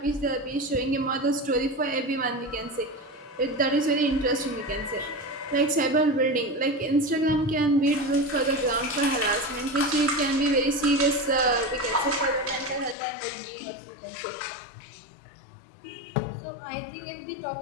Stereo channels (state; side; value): drops out; right; at 13.0 s